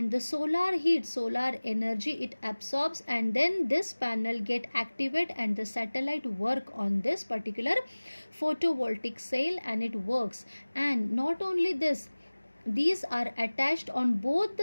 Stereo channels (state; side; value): inverted; both; correlation -1.00